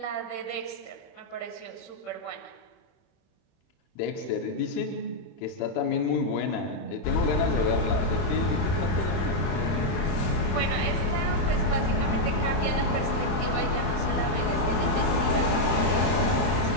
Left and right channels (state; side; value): late; right; 31 ms